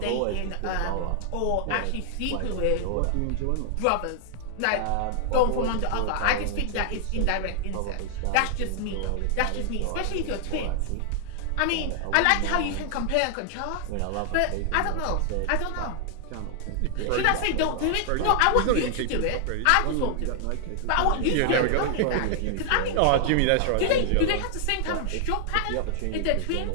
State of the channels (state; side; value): different; both; correlation 0.00